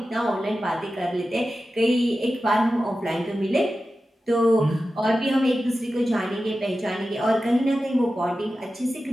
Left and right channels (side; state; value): both; normal; correlation 0.93